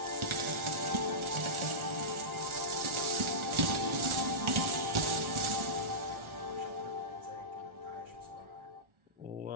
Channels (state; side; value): late; left; 1.4 ms